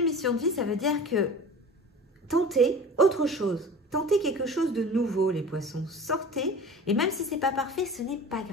de mission de vie, ça veut dire que tentez autre chose. Tentez quelque chose de nouveau, les poissons. Sortez, et même si ce n'est pas parfait, ce n'est pas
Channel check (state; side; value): normal; both; correlation 0.37